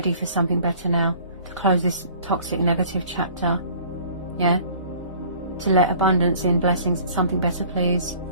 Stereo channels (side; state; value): both; inverted; correlation -0.51